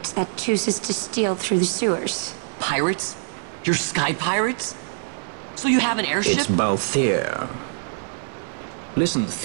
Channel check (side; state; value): left; silent; digital silence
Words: that chooses to steal through the sewers. Pirates? You're sky pirates? So you have an airship? It's Balthier. Listen,